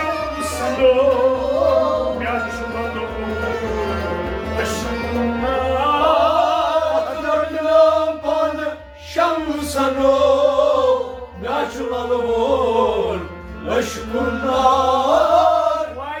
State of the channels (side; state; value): both; identical; correlation 1.00